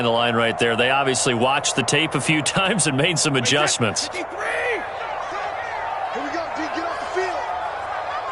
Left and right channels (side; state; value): both; identical; correlation 1.00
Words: the line right there. They obviously watched the tape a few times and made some adjustments. Here we go, D, get off the field.